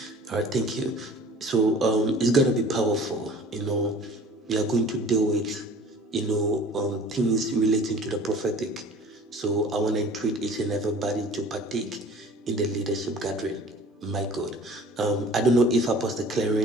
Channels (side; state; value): both; normal; correlation 0.46